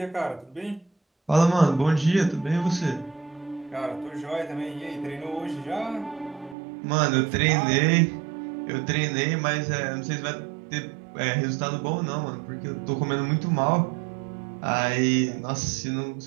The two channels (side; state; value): left; drops out; at 6.6 s